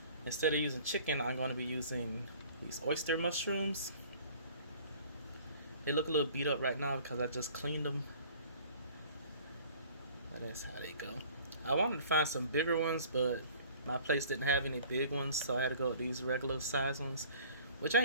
Instead of using chicken, I'm going to be using these oyster mushrooms. They look a little beat up right now because I just cleaned them. But that's how they go. I wanted to find some bigger ones, but my place didn't have any big ones, so I had to go with these regular size ones, which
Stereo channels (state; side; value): inverted; both; correlation -0.50